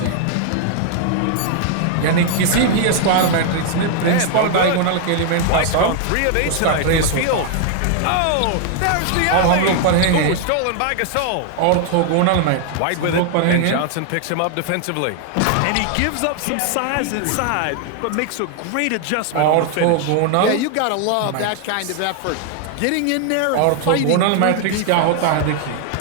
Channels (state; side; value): different; both; correlation 0.00